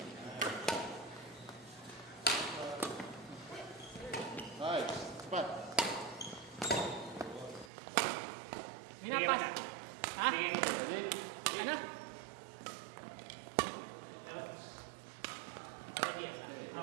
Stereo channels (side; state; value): left; drops out; at 7.7 s